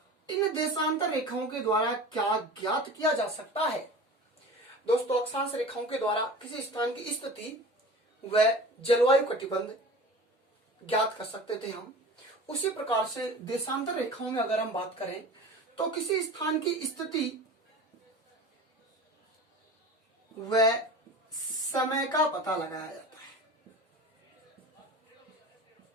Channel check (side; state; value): both; normal; correlation 0.36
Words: इन देशांतर रेखाओं के द्वारा क्या ज्ञात किया जा सकता है? दोस्तों अक्षांश रेखाओं के द्वारा किसी स्थान की स्थिति व जलवायु कटिबंध ज्ञात कर सकते थे हम। उसी प्रकार से देशांतर रेखाओं में अगर हम बात करें तो किसी स्थान की स्थिति व समय का पता लगाया जाता है।